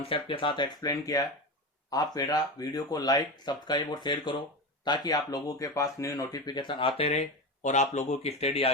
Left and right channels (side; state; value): both; normal; correlation 0.21